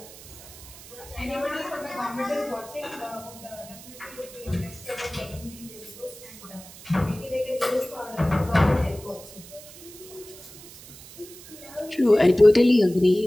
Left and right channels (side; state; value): right; noise; hiss, 18 dB below the sound